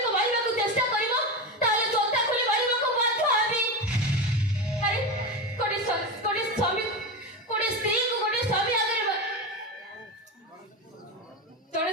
ମାରିବାକୁ ଚେଷ୍ଟା କରିବ ତାହେଲେ ଜୋତା ଖୋଲି ମାରିବାକୁ ବାଧ୍ୟ ହେବି। ଆରେ ଗୋଟେ ସ୍ୱାମୀ, ଗୋଟେ ସ୍ତ୍ରୀକୁ ଗୋଟେ ସ୍ୱାମୀ ଆଗରେ ଜଣେ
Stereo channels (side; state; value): both; normal; correlation 0.18